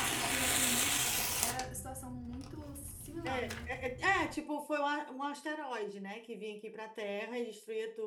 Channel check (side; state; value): both; identical; correlation 1.00